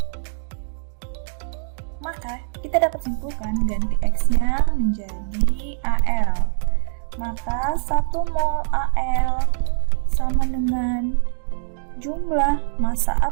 Maka kita dapat simpulkan ganti X-nya menjadi Al. Maka 1 mol Al sama dengan jumlah massa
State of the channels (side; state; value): left; silent; digital silence